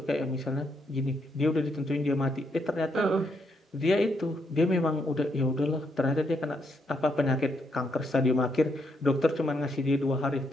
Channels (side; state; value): both; normal; correlation 0.77